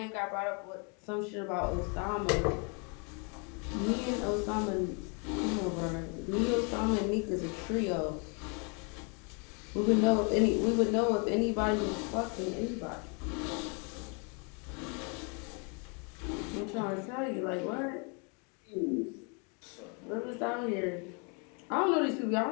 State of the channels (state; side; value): quieter; right; 35.8 dB